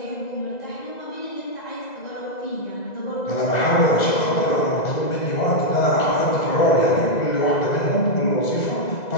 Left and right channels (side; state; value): right; late; 2.0 ms